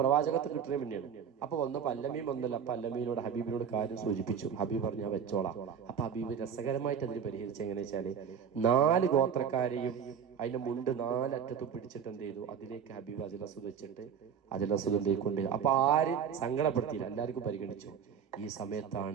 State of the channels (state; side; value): quieter; left; 7.8 dB